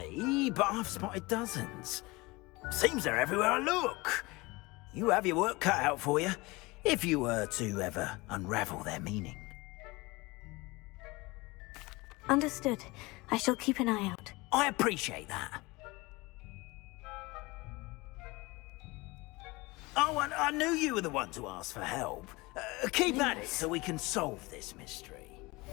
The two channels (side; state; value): right; quieter; 23.2 dB